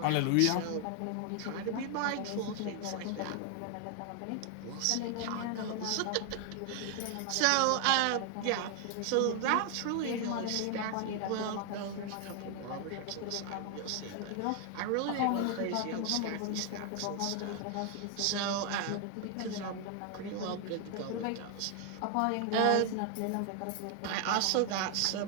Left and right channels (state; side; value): different; both; correlation 0.00